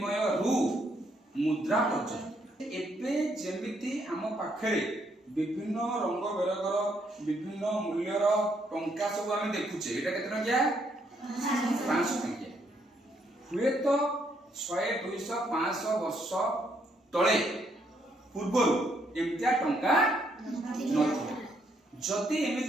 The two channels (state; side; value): normal; both; correlation 0.73